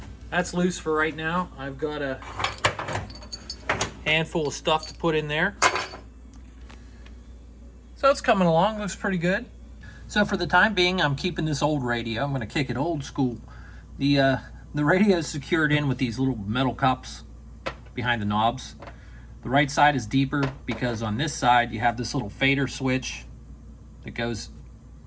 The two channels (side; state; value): both; identical; correlation 1.00